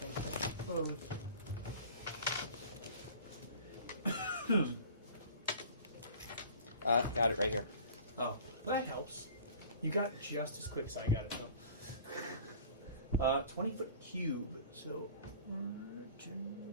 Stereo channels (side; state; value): both; inverted; correlation -0.45